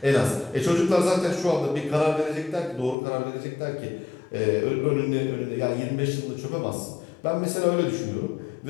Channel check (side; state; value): right; drops out; at 3.0 s